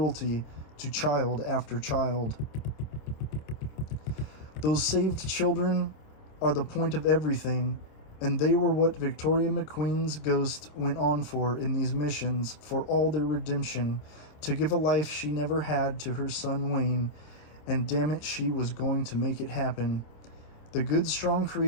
to child after child. Those saved children are the point of everything, and they were what Victoria McQueen's ghost went on for in these missions, for all their redemption, to give a life she never had to her son Wayne, and damn it, she was going to make it happen. The good, strong,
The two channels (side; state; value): right; late; 26 ms